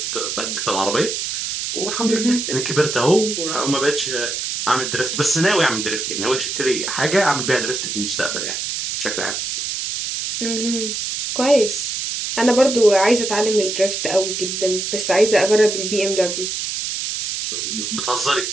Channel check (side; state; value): right; noise; hiss, 3 dB below the sound